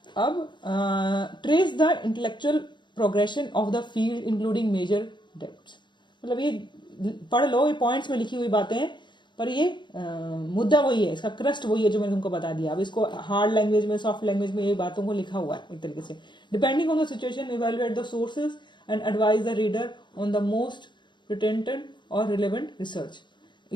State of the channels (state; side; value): late; right; 0.22 ms